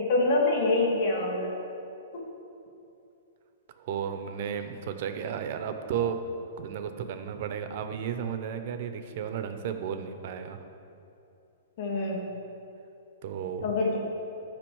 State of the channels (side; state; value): both; inverted; correlation -0.39